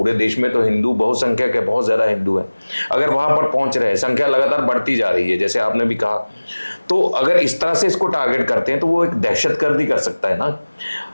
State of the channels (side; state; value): both; inverted; correlation -1.00